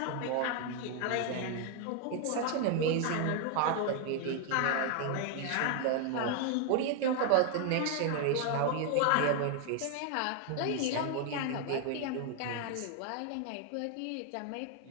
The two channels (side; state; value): both; different; correlation 0.00